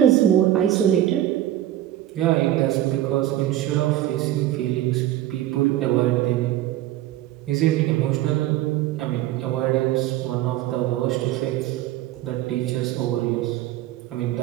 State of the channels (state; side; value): quieter; left; 13.5 dB